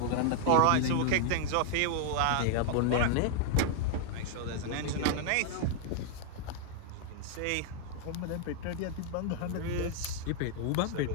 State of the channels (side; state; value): both; different; correlation -0.01